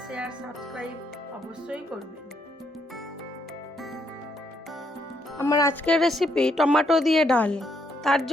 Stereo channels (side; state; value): both; normal; correlation 0.74